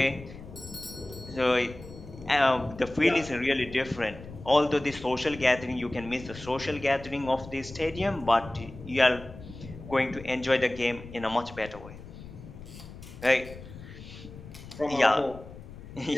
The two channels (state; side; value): noise; left; rumble, 15 dB below the sound